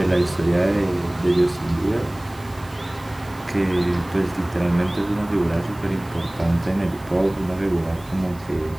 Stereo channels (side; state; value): right; noise; hiss, 24 dB below the sound